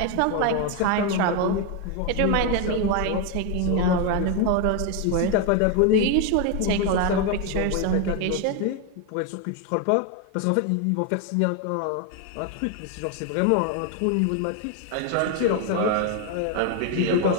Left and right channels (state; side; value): different; both; correlation 0.01